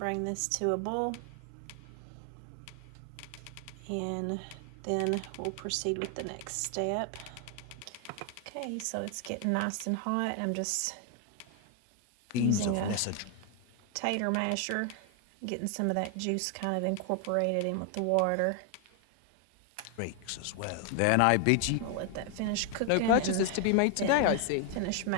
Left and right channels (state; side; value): different; both; correlation 0.00